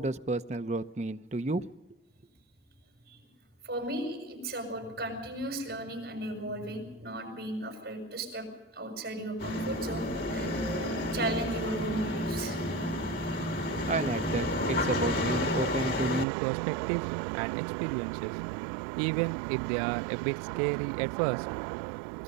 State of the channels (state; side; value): drops out; left; at 16.2 s